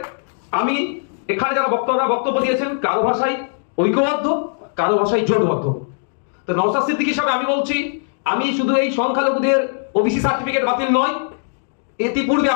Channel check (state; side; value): silent; right; digital silence